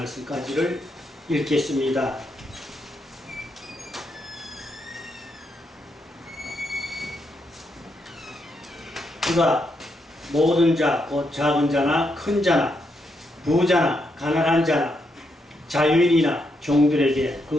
읽겠습니다. 그가 모든 자, 곧 작은 자나 큰 자나 부자나 가난한 자나 자유인이나 종들에게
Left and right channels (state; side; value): normal; both; correlation 0.80